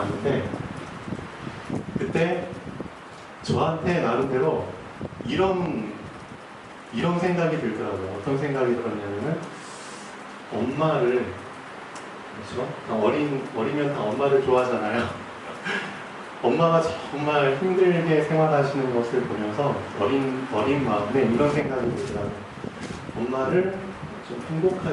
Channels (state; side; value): identical; both; correlation 1.00